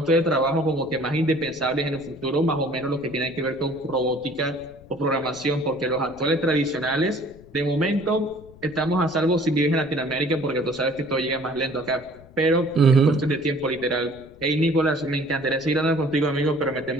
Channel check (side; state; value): left; noise; rumble, 23 dB below the sound